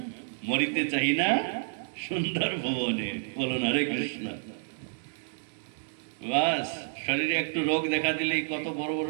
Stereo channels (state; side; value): silent; left; 58 dB below the other